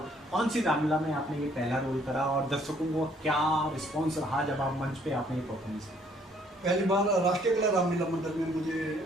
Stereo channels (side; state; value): both; normal; correlation 0.63